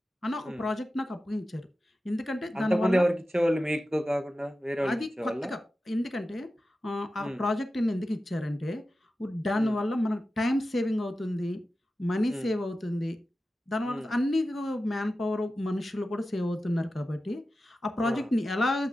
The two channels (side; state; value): both; normal; correlation 0.93